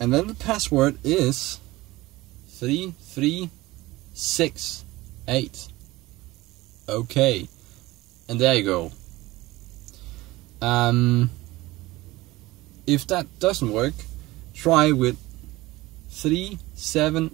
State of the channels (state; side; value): quieter; left; 19.2 dB